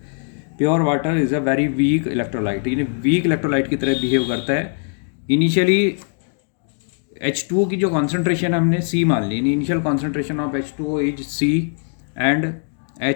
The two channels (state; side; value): silent; right; 65 dB below the other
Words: Pure water is a very weak electrolyte, यानी वीक इलेक्ट्रोलाइट की तरह बिहेव करता है। इनिशियली H2O की जो कॉन्सेंट्रेशन हमने C मान ली, initial concentration of H2O is C and